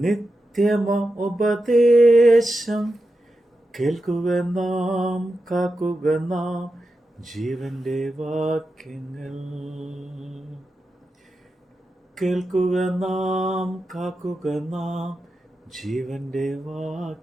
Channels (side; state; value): both; normal; correlation 0.90